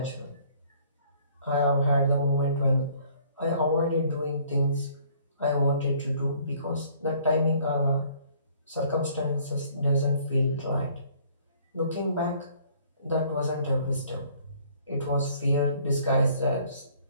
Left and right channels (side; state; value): both; inverted; correlation -0.59